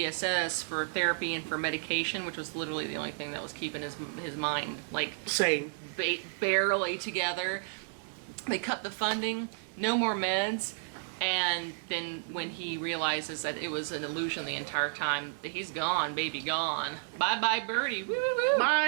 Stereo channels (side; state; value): left; silent; 56 dB below the other